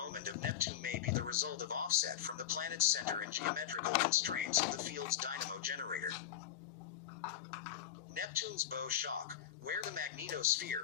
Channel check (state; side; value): quieter; right; 10.6 dB